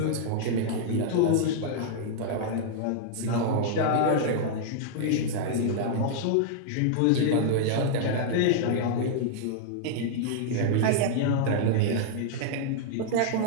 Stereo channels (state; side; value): different; both; correlation -0.01